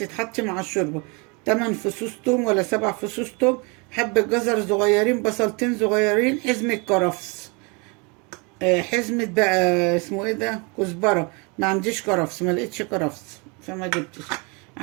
مع الشوربه: 8 فصوص توم ولا 7 فصوص توم، حبة جزر صغيرين، بصلتين صغيرين، حزمة كرفس، حزمة بقى اسمه ايه ده، كزبرة. ما عنديش كرفس، ما لقيتش كرفس فما جبتش.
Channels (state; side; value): quieter; left; 30.6 dB